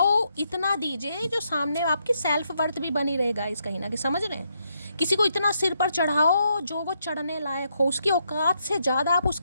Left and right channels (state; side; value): inverted; both; correlation -0.78